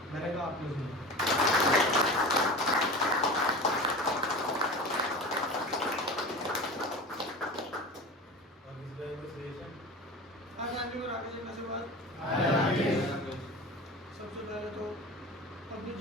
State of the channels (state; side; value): normal; both; correlation 0.32